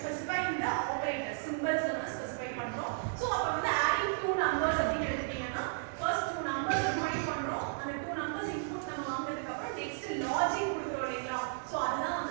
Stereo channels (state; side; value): silent; left; digital silence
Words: specifying the operators, symbols நம்ம ஸ்பெசிஃபை பண்றோம். So அப்ப வந்து adding two numbers அப்படினு எடுத்தீங்கன்னா first two numbers combine பண்றோம். அந்த two numbers input நம்ம வாங்குனதுக்கு அப்புறம் next logic கொடுக்கிறோம் இல்லையா? So அதுதான்